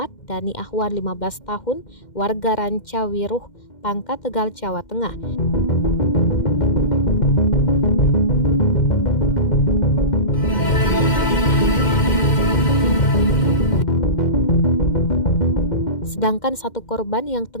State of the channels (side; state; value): right; late; 2.1 ms